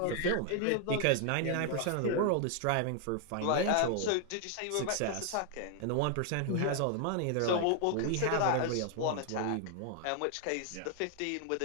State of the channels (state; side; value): different; both; correlation 0.00